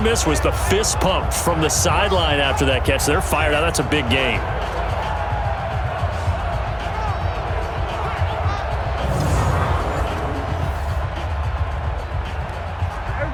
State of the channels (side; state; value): both; identical; correlation 1.00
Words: missed was the fist pump from the sideline after that catch. They're fired out. That's a big game.